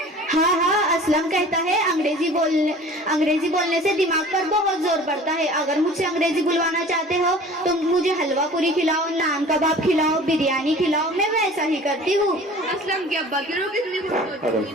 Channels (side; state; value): both; normal; correlation 0.44